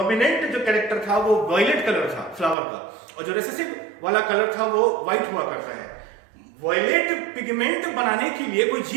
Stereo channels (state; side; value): drops out; left; at 2.6 s